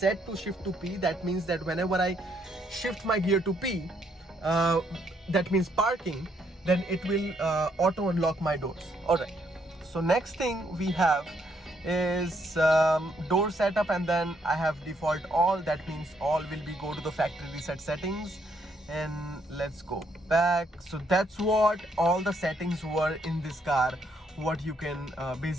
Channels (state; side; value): normal; both; correlation 0.72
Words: to shift to P. That means that whenever I shift my gear to P, that means parking, then it will auto unlock my doors. All right, so next thing we have is door setup, and then I have default all. That means all will be go to the factory reset settings, and let's go back. So that's what all the settings were in this car, what you can